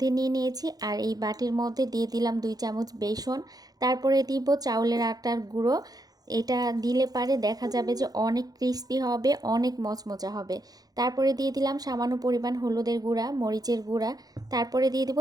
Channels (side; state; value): left; late; 0.19 ms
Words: নিয়ে নিয়েছি আর এই বাটির মধ্যে দিয়ে দিলাম 2 চামচ বেসন, তারপরে দিব চাউলের আটার গুঁড়ো। এটা দিলে পারে দেখা যাবে যে অনেক ক্রিস্পি হবে, অনেক মচমচা হবে। তারপরে দিয়ে দিলাম সামান্য পরিমাণ হলুদের গুঁড়া, মরিচের গুঁড়া, তারপরে দিয়ে দিব